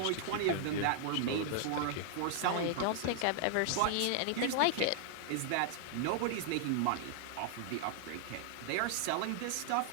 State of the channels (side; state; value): both; different; correlation 0.00